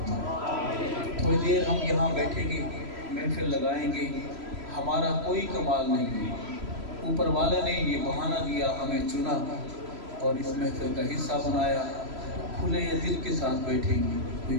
تھوڑی دیر ہم یہاں بیٹھیں گے، محفل لگائیں گے. ہمارا کوئی کمال نہیں ہے، اوپر والے نے یہ بہانہ دیا، ہمیں چنا اور اس محفل کا حصہ بنایا. کھلے دل کے ساتھ بیٹھیں گے، کوئی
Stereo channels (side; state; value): left; late; 3.0 ms